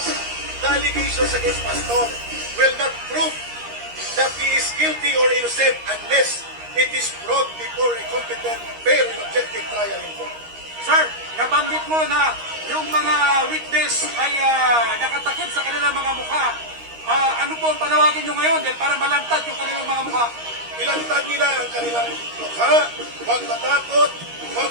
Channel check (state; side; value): late; left; 13 ms